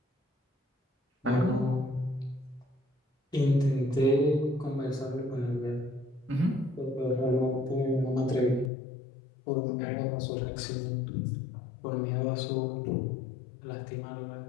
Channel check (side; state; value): right; drops out; at 8.7 s